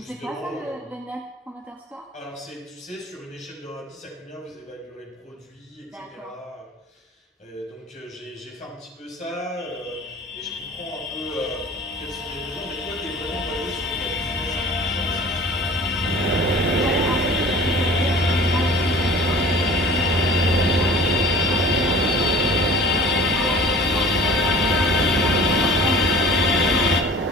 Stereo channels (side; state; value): both; normal; correlation 0.44